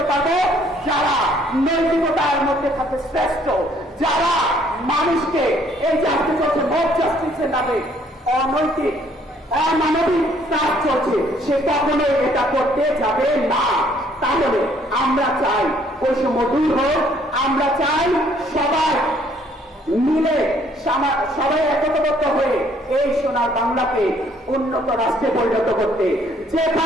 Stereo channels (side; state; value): both; normal; correlation 0.63